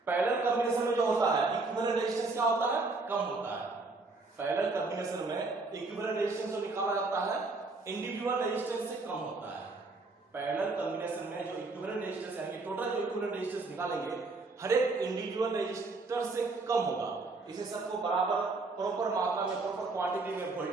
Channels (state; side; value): quieter; left; 3.6 dB